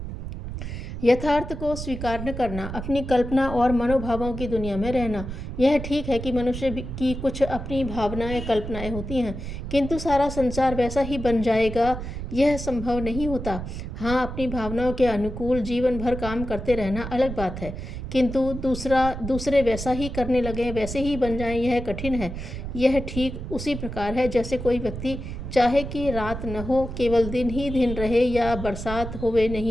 यथार्थ को स्वीकार न करना, अपनी कल्पना और मनोभावों की दुनिया में रहना। यह ठीक है कि मनुष्य की कुछ अपनी भावनाएं, कल्पनाएं होती हैं, किंतु सारा संसार वैसा ही बन जाएगा, यह संभव नहीं होता। हाँ, अपनी भावनाओं के अनुकूल जीवन भर काम करते रहना अलग बात है, किंतु दूसरे वैसा ही करने लगे, वैसे ही बन जाएं, यह कठिन है। यह ठीक उसी प्रकार है जैसे कोई व्यक्ति चाहे कि रात न हो, केवल दिन ही दिन रहे, या बरसात होवे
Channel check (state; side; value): noise; right; rumble, 7 dB below the sound